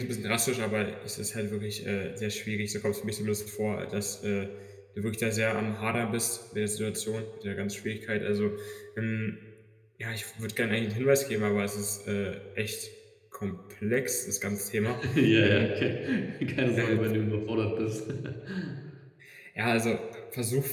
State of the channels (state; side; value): identical; both; correlation 1.00